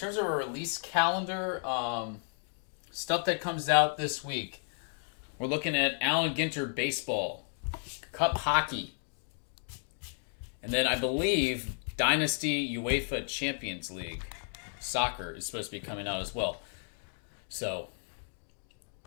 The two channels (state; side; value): silent; right; 56 dB below the other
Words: of a release calendar, stuff that comes out this week, we're looking at Allen Ginter Baseball, Cup Hockey, and then I believe Dynasty UEFA Champions League Soccer is supposed to be coming out as well. So,